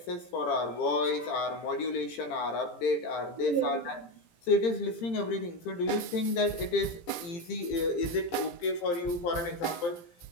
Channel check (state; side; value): late; right; 18 ms